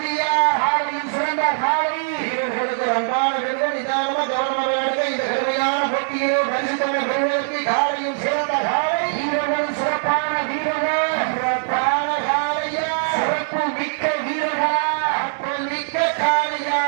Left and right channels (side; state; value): left; silent; digital silence